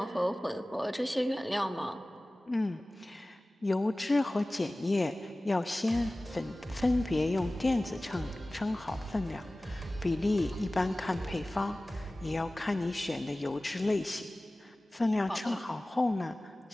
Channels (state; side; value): normal; both; correlation 0.98